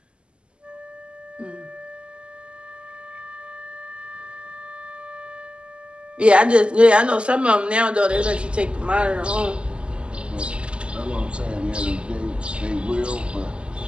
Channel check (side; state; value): left; late; 0.053 ms